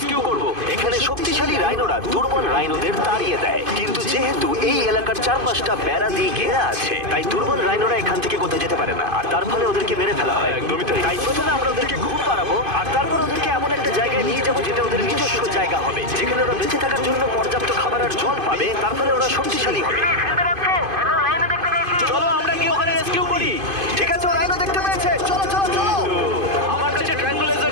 করব। এখানে শক্তিশালী রাইনোরা দুর্বল রাইনোদের তাড়িয়ে দেয়, কিন্তু যেহেতু এই এলাকার চারপাশটা বেড়া দিয়ে ঘেরা আছে, তাই দুর্বল রাইনোরা এখান থেকে কোথাও যেতে পারে না, আর তার ফলে ওদেরকে মেরে ফেলা হয়। একদমই তাই। তাই প্রথমে আমরা ওদেরকে ঘুম পাড়াবো, আর তারপর ওদেরকে এমন একটা জায়গায় নিয়ে যাবো যেটা ওদের নিজস্ব জায়গা হবে, যেখানে ওরা বেঁচে থাকার জন্য পর্যাপ্ত খাবার আর জল পাবে। তার ফলে ওরা শক্তিশালী হবে। চলো আমরা কি ওখানে রেস্কিউ করি? ঠিক আছে, ও রাইনো দেখতে পেয়েছে। চলো চলো চলো। আমার কাছে ট্রায়াঙ্গুলার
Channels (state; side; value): late; left; 2.5 ms